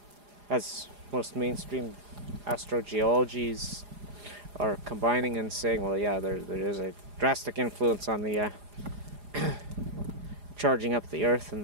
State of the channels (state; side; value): late; left; 4.9 ms